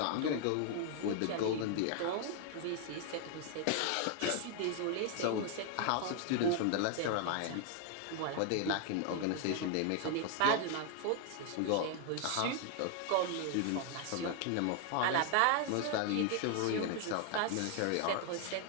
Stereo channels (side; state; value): both; different; correlation 0.00